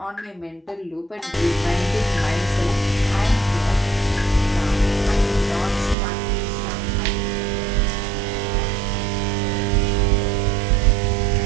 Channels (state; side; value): drops out; left; at 6.0 s